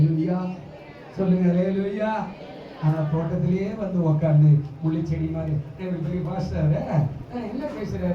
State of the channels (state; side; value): identical; both; correlation 1.00